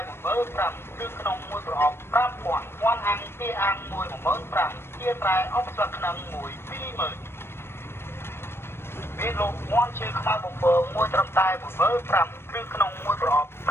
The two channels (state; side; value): late; right; 0.12 ms